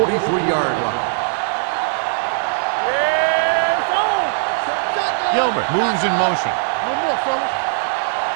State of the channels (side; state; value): left; silent; 66 dB below the other